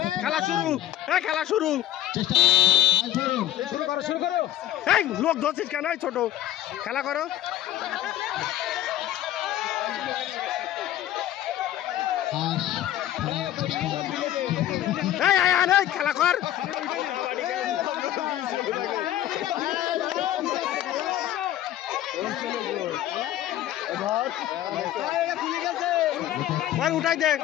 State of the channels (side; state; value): right; quieter; 12.8 dB